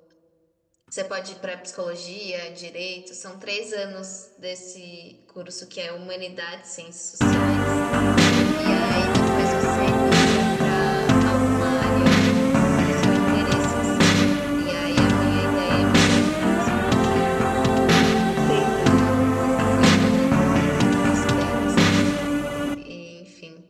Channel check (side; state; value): both; identical; correlation 1.00